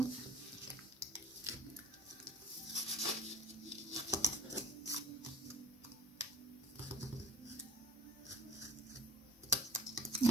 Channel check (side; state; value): both; normal; correlation 0.48